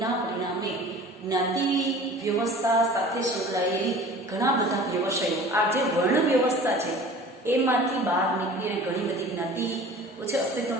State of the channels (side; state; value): both; normal; correlation 0.43